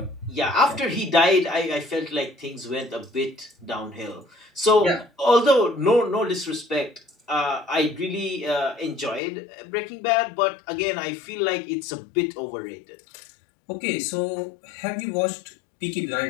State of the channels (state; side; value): drops out; right; at 9.2 s